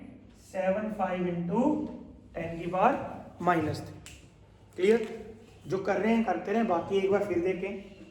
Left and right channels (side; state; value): both; identical; correlation 1.00